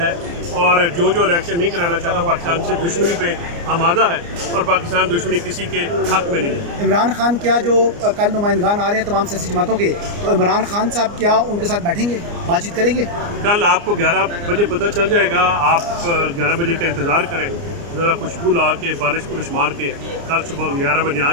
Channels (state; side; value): late; left; 29 ms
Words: اور جو الیکشن نہیں کرانا چاہتا پاکستان سے دشمنی پہ آمادہ ہے، اور پاکستان دشمنی کسی کے حق میں نہیں ہے. عمران خان کیا جو کل نمائندگان آ رہے ہیں تمام سیاسی جماعتوں کے، تو عمران خان صاحب کیا ان کے ساتھ بیٹھیں گے، بات چیت کریں گے؟ کل آپ کو 11 بجے پتہ چل جائے گا. آپ 11 بجے کا انتظار کریں، ذرا خوشبو لا کے پالش پولش مار کے کل صبح 11 بجے آ